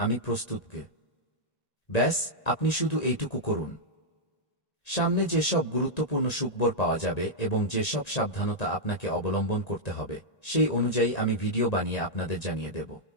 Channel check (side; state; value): right; late; 1.9 ms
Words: প্রস্তুত। ব্যাস, আপনি শুধু এইটুকু করুন। সামনে যেসব গুরুত্বপূর্ণ সুখবর পাওয়া যাবে এবং যেসব সাবধানতা আপনাকে অবলম্বন করতে হবে সেই অনুযায়ী আমি ভিডিও বানিয়ে আপনাদের জানিয়ে দেব।